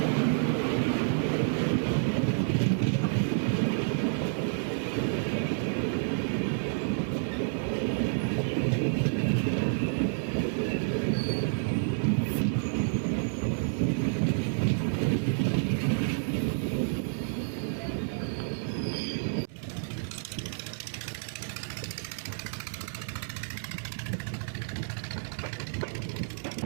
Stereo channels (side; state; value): left; silent; digital silence